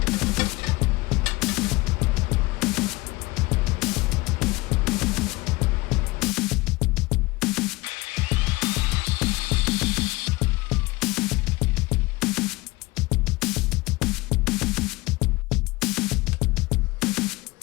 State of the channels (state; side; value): quieter; right; 22.1 dB